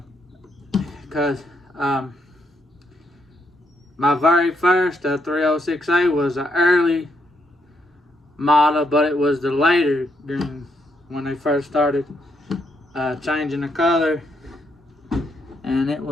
Because my very first 306A was an early model, but it was the later green when they first started changing the color, and it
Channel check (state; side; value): normal; both; correlation 0.76